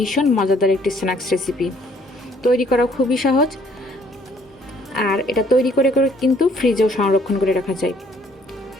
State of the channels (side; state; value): both; normal; correlation 0.62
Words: মজাদার একটি স্ন্যাক্স রেসিপি। তৈরি করা খুবই সহজ, আর এটা তৈরি করে কিন্তু ফ্রিজেও সংরক্ষণ করে রাখা যায়।